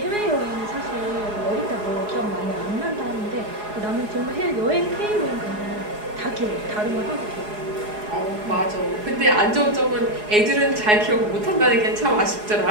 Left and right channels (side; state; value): left; late; 4.8 ms